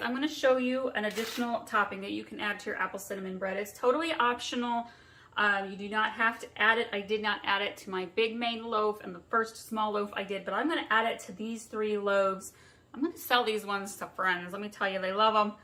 going to show you an additional topping that you can add to your apple cinnamon bread. It's totally optional. You do not have to add it. I did not add it to my big main loaf and the first small loaf I did, but I'm going to add it to these 3 loaves. I'm going to sell these ones to friends. Let me tell you, they love them.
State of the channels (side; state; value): both; identical; correlation 1.00